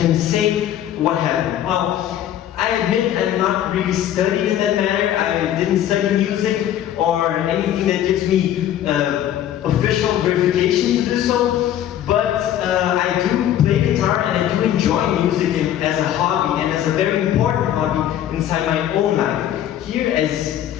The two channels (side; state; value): right; quieter; 11.3 dB